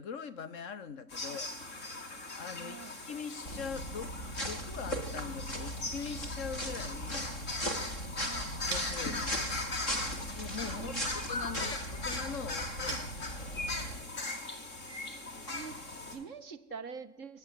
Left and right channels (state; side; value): late; right; 3.7 ms